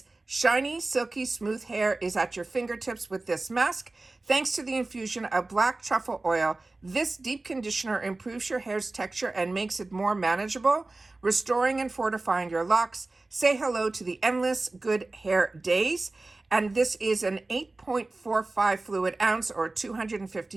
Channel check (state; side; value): quieter; left; 3.2 dB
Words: shiny, silky, smooth hair is at your fingertips with this mask. Thanks to the infusion of black truffle oil, this deep conditioner improves your hair's texture and makes it more manageable, restoring and fortifying your locks. Say hello to the endless good hair days. And this is an 8.45 fluid ounce or